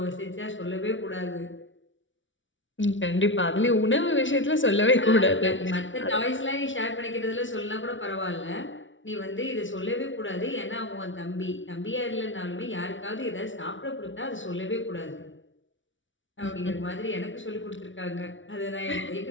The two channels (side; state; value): right; late; 0.56 ms